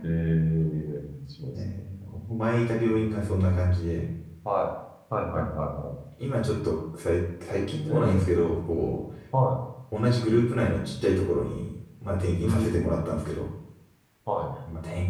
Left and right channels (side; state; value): both; identical; correlation 1.00